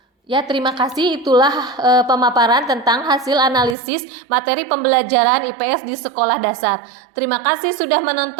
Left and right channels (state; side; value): drops out; left; at 3.8 s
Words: Ya, terima kasih. Itulah pemaparan tentang hasil analisis materi pembelajaran IPS di sekolah dasar. Terima kasih sudah